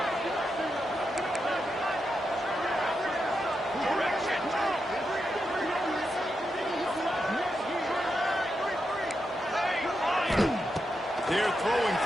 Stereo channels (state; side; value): normal; both; correlation 0.86